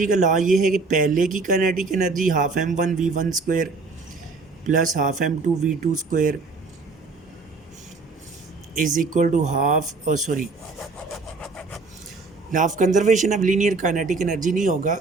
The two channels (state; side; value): quieter; left; 4.0 dB